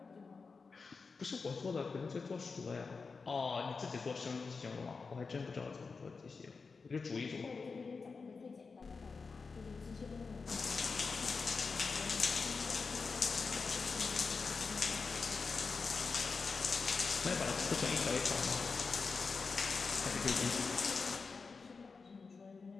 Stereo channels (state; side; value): quieter; right; 4.6 dB